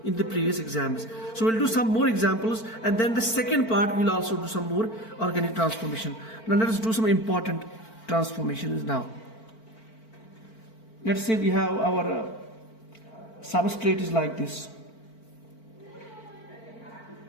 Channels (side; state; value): right; late; 4.5 ms